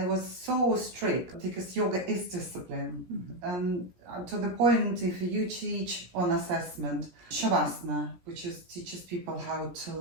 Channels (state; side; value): late; left; 17 ms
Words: was so strict because yoga is discipline. And to the point, if you teach on assessment, Shavasana, which teaches people how to